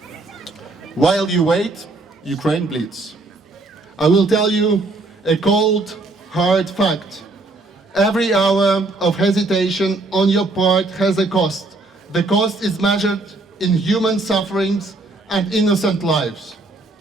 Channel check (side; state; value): left; quieter; 3.2 dB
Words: While you wait, Ukraine bleeds. I will tell you a cold, hard fact. Every hour of hesitation on your part has a cost. The cost is measured in human sufferings and innocent lives.